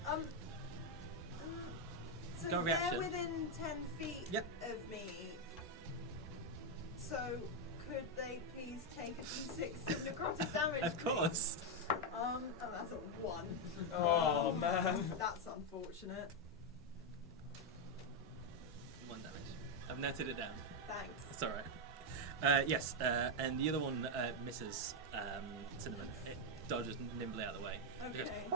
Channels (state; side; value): normal; both; correlation 0.02